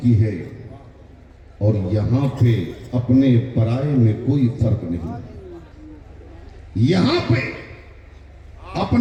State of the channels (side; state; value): both; identical; correlation 1.00